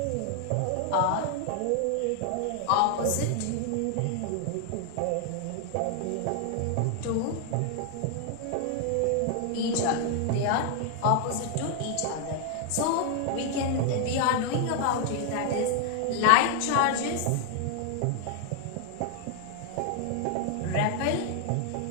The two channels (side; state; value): both; different; correlation 0.00